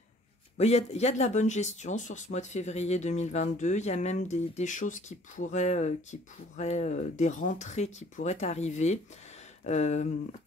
Il y a de la bonne gestion sur ce mois de février 2022. Il y a même des choses qui pourraient, des rentrées qui pourraient arriver,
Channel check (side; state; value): both; normal; correlation 0.56